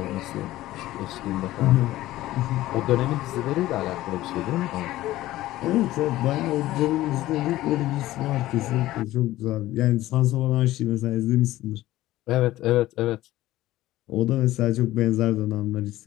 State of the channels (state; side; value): quieter; right; 15.9 dB